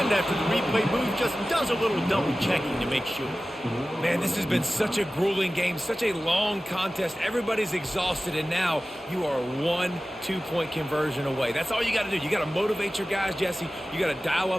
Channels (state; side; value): normal; both; correlation 0.96